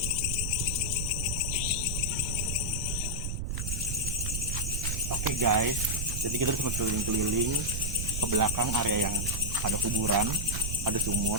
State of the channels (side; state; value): right; noise; rumble, 2 dB below the sound